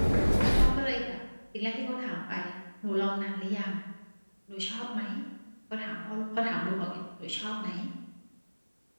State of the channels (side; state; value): both; inverted; correlation -1.00